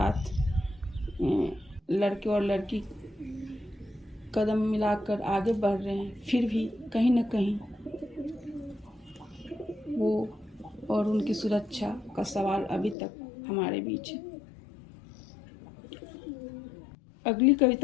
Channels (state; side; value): drops out; right; at 13.0 s